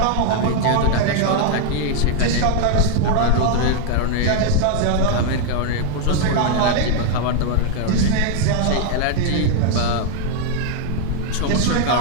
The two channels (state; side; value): different; both; correlation 0.00